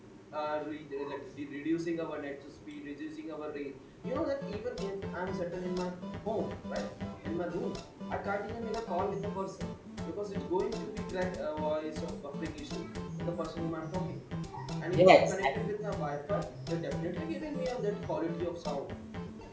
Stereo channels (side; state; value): both; identical; correlation 1.00